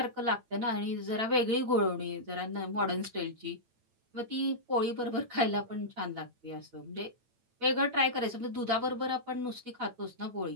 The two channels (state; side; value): late; left; 8.9 ms